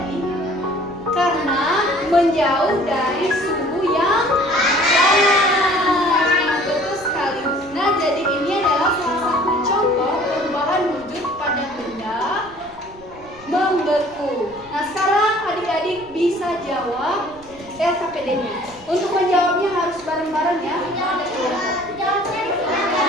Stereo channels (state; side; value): noise; right; rumble, 24 dB below the sound